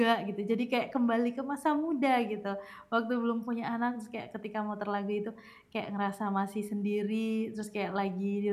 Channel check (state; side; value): identical; both; correlation 1.00